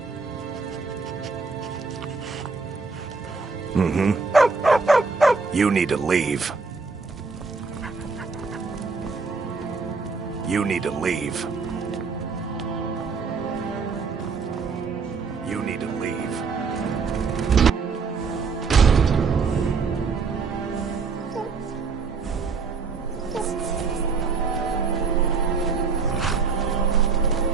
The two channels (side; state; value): left; quieter; 4.8 dB